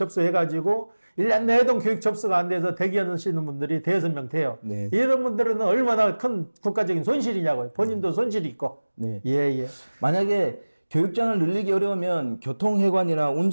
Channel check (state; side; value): inverted; both; correlation -1.00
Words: 1년 내동 교육 접수가 안 돼서 대기하시는 분들이 대여섯 명 돼요. 네. 이런 분들은 얼마나 큰 국가적인 손실이냐고요. 본인도 손실이 있고. 네. 예, 예. 만약에 교육장을 늘리기 어려우면 교통해관이나